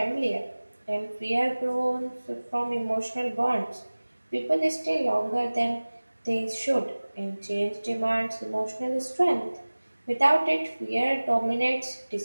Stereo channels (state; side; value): inverted; both; correlation -1.00